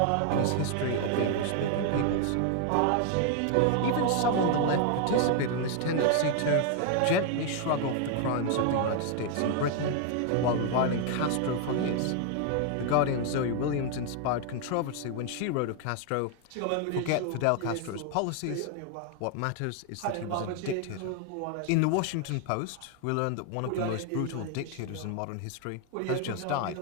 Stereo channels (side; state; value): both; different; correlation 0.00